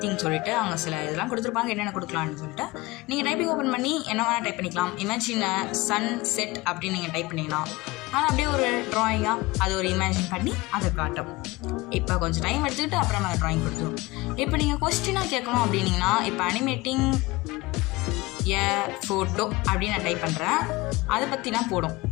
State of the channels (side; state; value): right; quieter; 21.5 dB